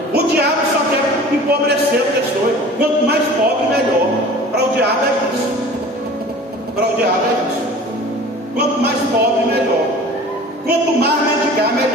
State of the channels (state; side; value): normal; both; correlation 0.42